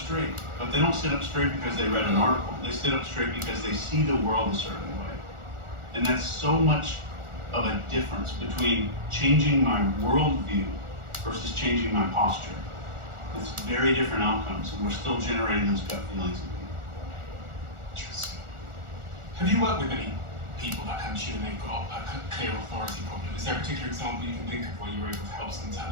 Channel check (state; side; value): late; left; 1.4 ms